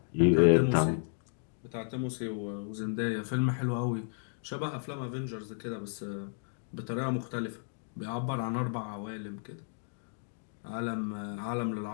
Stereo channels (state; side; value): silent; right; digital silence